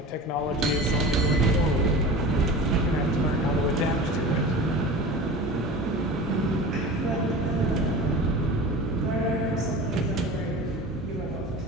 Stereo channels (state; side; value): normal; both; correlation 0.35